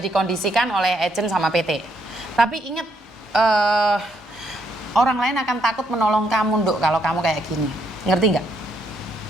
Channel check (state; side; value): normal; both; correlation 0.74